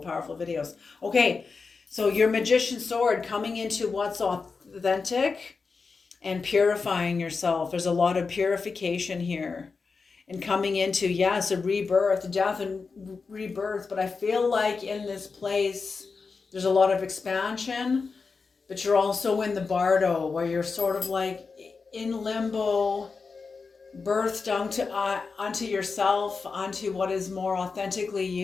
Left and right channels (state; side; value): quieter; right; 4.7 dB